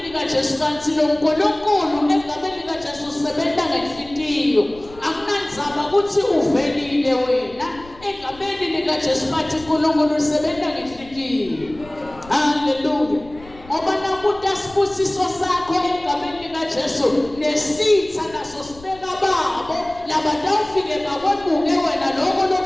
likaJesu. Kanti lo uNkulunkulu egameni likaJesu usebenza ngenhliziyo. Akunandzaba ukuthi uvelile wena egameni likaJesu, bathi uNkulunkulu usebenza ngenhliziyo. Hallelujah. Ngoba nakuthi asibusiso sakho egameni likaJesu nesitha naso sibeka babo labatawufike bakwebuke wena lokho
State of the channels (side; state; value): left; noise; rumble, 21 dB below the sound